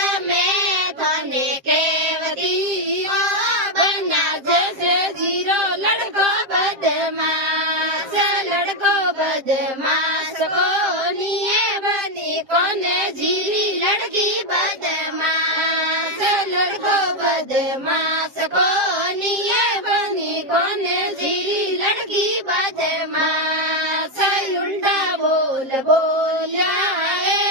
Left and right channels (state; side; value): late; left; 7.5 ms